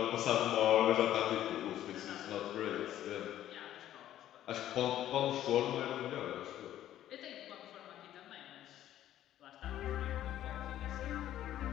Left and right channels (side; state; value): right; quieter; 12.3 dB